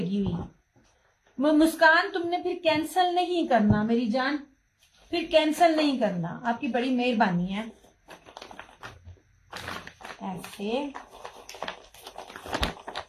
हुई। मुस्कान, तुमने फिर कैंसिल नहीं करना मेरी जान, फिर कैंसिल नहीं करना, आपकी बड़ी मेहरबानी है। ऐसे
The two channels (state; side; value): identical; both; correlation 1.00